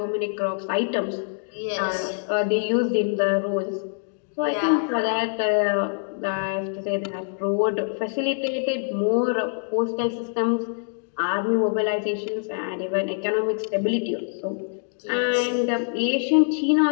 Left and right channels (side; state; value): right; silent; digital silence